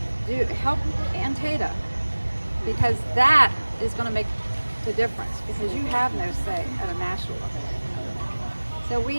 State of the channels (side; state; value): both; inverted; correlation -1.00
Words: help Antietam, because that is going to make the difference, because you have no say at a national level. So